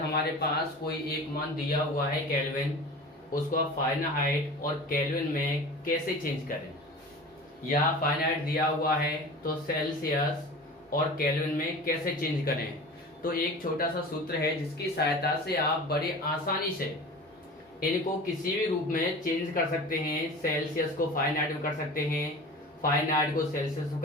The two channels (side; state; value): both; normal; correlation 0.36